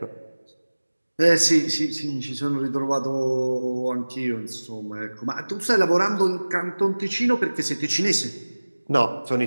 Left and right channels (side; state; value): both; inverted; correlation -1.00